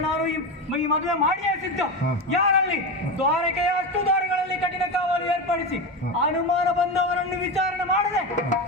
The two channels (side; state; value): both; normal; correlation 0.18